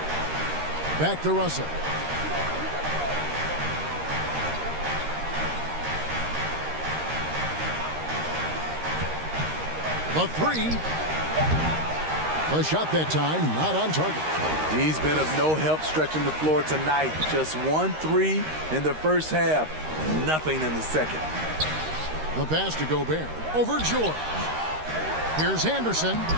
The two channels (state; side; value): late; left; 13 ms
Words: Back to Russell. The 3. The shot that time, not on target. He's been of no help stretching the floor tonight. Just 1 3 in the first half. Nothing in the second. The pass to Gobert. Over George. Here's Anderson.